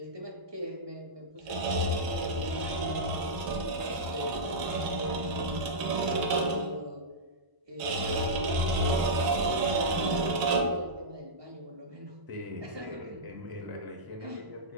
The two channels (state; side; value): late; left; 1.0 ms